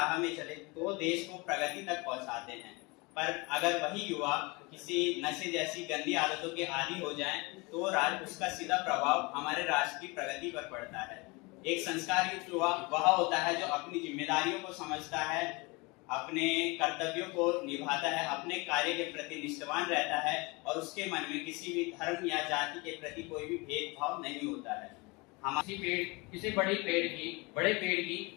में चले, तो देश को प्रगति तक पहुंचाते हैं। पर अगर वही युवा किसी नशे जैसी गंदी आदतों के आदी हो जाए, तो उसका सीधा प्रभाव हमारे राष्ट्र की प्रगति पर पड़ता है। एक संस्कार युक्त युवा वह होता है जो अपनी जिम्मेदारियों को समझता है, अपने कर्तव्यों को निभाता है, अपने कार्य के प्रति निष्ठावान रहता है और उसके मन में किसी भी धर्म या जाति के प्रति कोई भी भेदभाव नहीं होता है। किसी बड़े पेड़ की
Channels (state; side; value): quieter; right; 26.5 dB